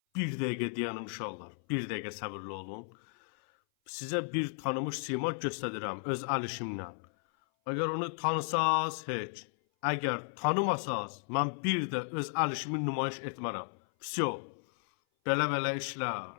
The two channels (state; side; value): silent; right; 55 dB below the other